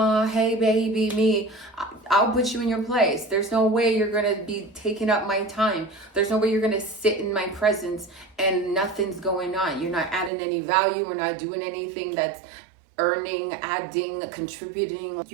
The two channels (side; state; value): left; drops out; at 10.3 s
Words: hey baby, me, I'll put you in your place. There's no way you're gonna be taking up my time. There's no way you're gonna sit in my presence and nothing's going on. You're not adding any value. We're not doing anything that's earning, adding, contributing.